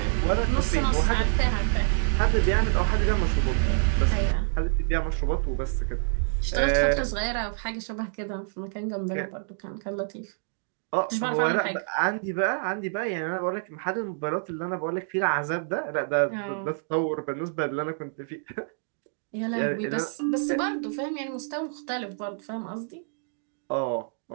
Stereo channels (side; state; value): left; silent; digital silence